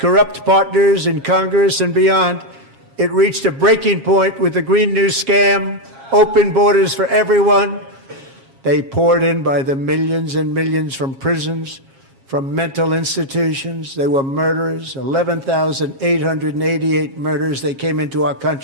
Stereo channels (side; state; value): left; late; 7.4 ms